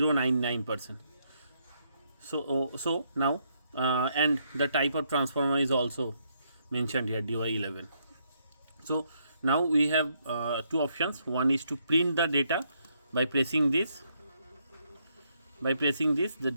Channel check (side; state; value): both; inverted; correlation -0.74